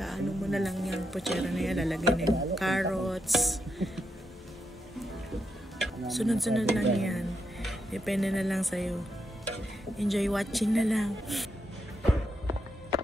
mo na lang yung pochera na yan. Lalagay na yung carrots. Sunod-sunod lang yan. Depende na lang sa'yo. Enjoy watching na lang.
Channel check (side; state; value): both; normal; correlation 0.83